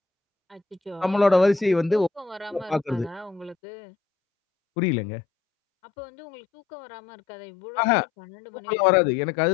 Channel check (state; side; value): drops out; right; at 3.6 s